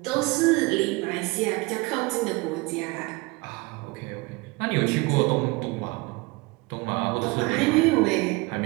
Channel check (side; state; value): left; quieter; 24.9 dB